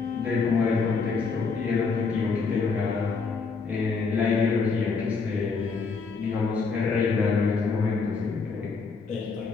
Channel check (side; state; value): right; quieter; 4.8 dB